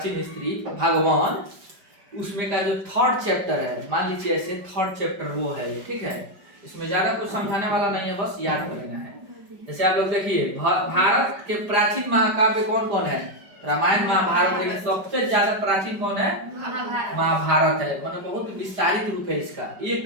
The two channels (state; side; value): late; left; 5.1 ms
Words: हिस्ट्री भगवान, उसमें का जो थर्ड चैप्टर है, मान लीजिए ऐसे थर्ड चैप्टर वो है, ठीक है। इसमें ज्यादा कुछ समझाने वाला नहीं है, बस याद कर लेना है। जैसे आप लोग देखिए, भारत के प्राचीन महाकाव्य कौन कौन है? रामायण महाभारत, लेकिन सबसे ज्यादा प्राचीन कौन है? महाभारत है। मतलब बहुत विस्तारित रूप है इसका,